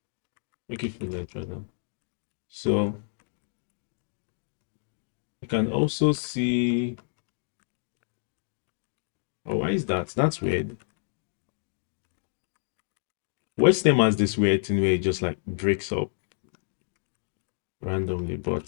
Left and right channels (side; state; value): right; silent; digital silence